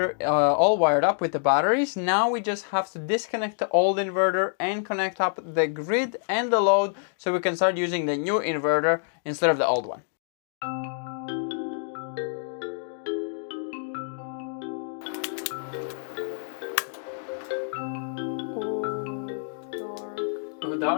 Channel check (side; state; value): right; silent; digital silence